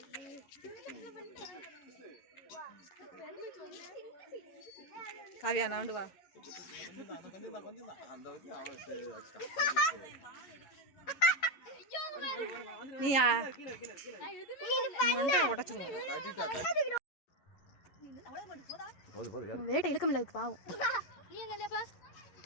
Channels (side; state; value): right; late; 11 ms